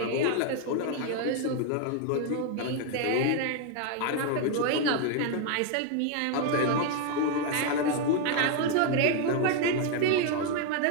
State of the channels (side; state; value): both; different; correlation 0.01